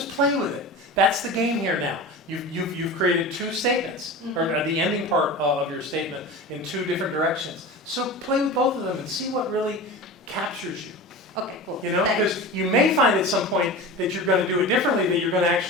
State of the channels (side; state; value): both; normal; correlation 0.31